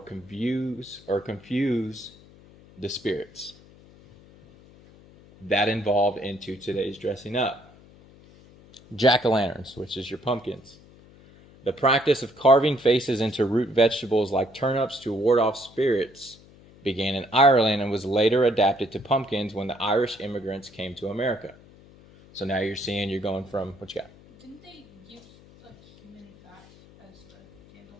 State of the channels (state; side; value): noise; left; hum, 24 dB below the sound